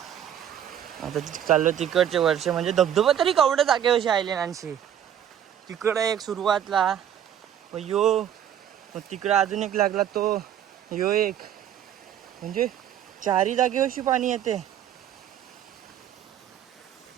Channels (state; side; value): quieter; left; 9.9 dB